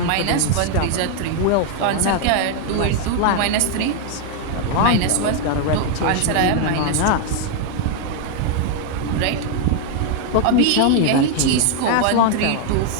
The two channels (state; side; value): different; both; correlation 0.00